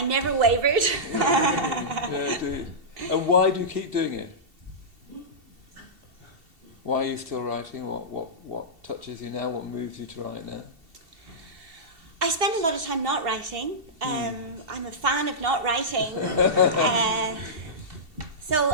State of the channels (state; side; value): late; left; 2.7 ms